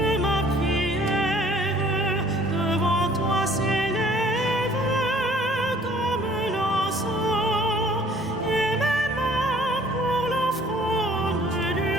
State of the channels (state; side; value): normal; both; correlation 0.56